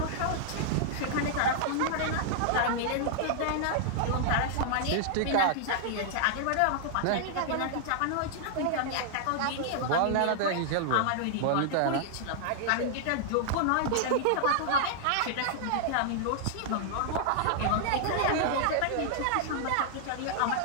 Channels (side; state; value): both; different; correlation -0.01